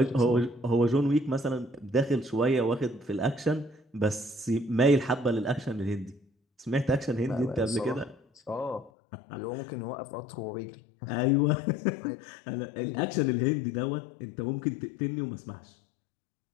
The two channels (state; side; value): drops out; right; at 8.9 s